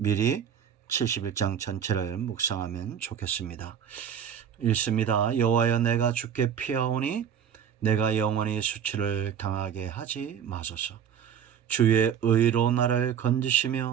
71장 전체를 묵상하면 좋겠습니다. 읽습니다. 여호와여, 내가 주께 피하오니 내가 영원히 수치를 당하게 하지 마소서. 주의 의로 나를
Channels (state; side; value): quieter; left; 8.4 dB